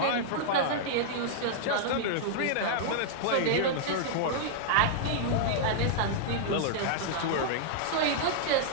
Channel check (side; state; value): both; different; correlation -0.01